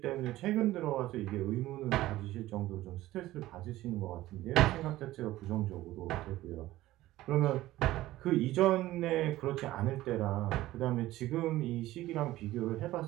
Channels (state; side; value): quieter; left; 16.1 dB